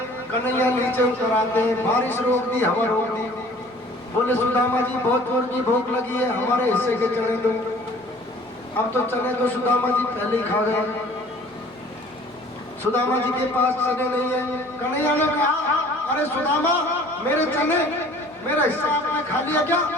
कन्हैया नीचे उतर आते हैं, बारिश रोक दी, हवा रोक दी। बोले सुदामा जी बहुत जोर की भूख लगी है, हमारे हिस्से के चने दो। अब तो चने तो सुदामा जी पहले ही खा गए, सुदामा जी के पास चने नहीं है। कन्हैया ने कहा, अरे सुदामा मेरे चने, मेरा हिस्सा आपने खा लिया क्या?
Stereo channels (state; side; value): noise; right; hum, 29 dB below the sound